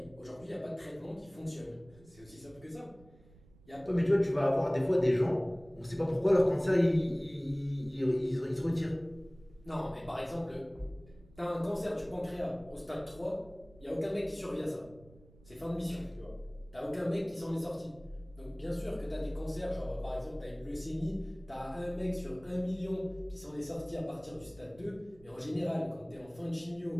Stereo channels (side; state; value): right; noise; rumble, 24 dB below the sound